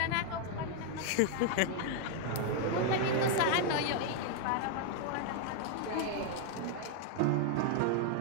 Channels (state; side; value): different; both; correlation 0.00